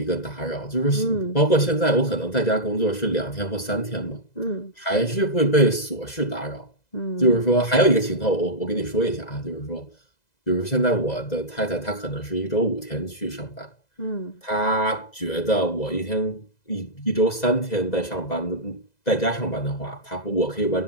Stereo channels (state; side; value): late; right; 2.0 ms